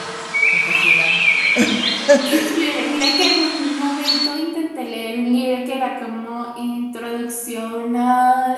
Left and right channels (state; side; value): identical; both; correlation 1.00